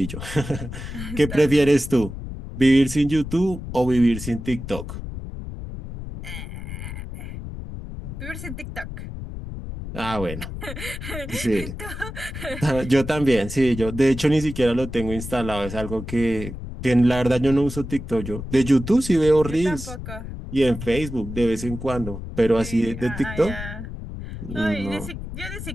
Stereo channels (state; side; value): noise; left; rumble, 9 dB below the sound